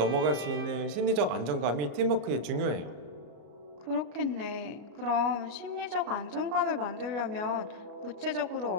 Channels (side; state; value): left; late; 34 ms